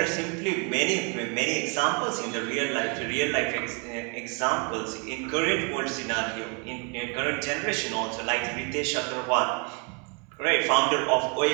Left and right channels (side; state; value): left; quieter; 33.8 dB